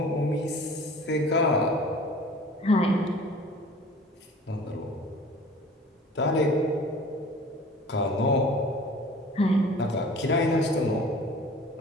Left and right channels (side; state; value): both; normal; correlation 0.44